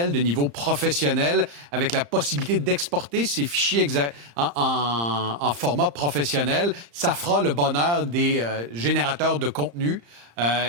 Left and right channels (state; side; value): late; left; 35 ms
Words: de niveau professionnel avec la possibilité d'exporter ces fichiers en format professionnel. Ça fera le bonheur des générateurs de contenu.